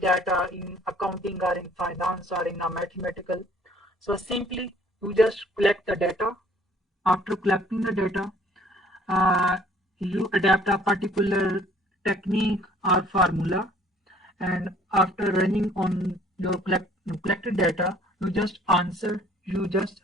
in accounting or in finance or in a mathematical, so simply you just collect the data. After collecting the data, uh, you adapt a particular technique or formula, and after running on your collected data, you just answer, you just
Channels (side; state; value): both; normal; correlation 0.57